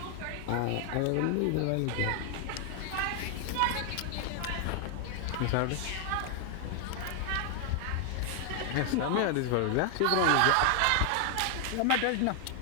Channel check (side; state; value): both; different; correlation 0.00